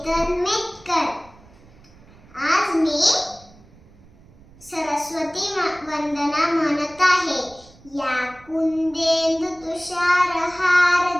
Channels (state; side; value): noise; right; rumble, 25 dB below the sound